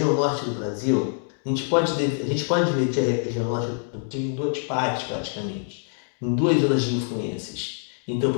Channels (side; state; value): right; silent; 62 dB below the other